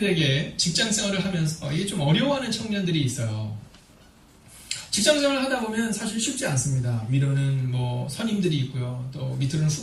직장 생활을 하면서 이게 좀 어려워하는 청년들이 있어요. 직장 생활을 하다 보면 사실 쉽지 않습니다. 위로는 뭐 선임들이 있고요. 또 밑으로는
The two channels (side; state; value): both; identical; correlation 1.00